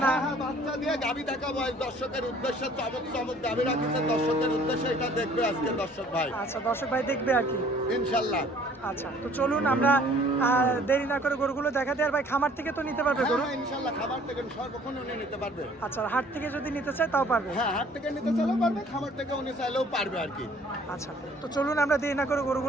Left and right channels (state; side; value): normal; both; correlation 0.55